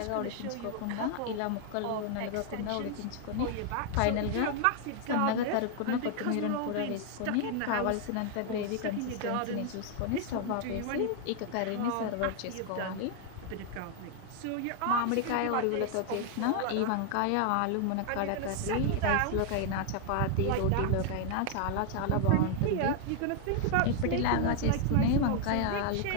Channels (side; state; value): both; different; correlation 0.00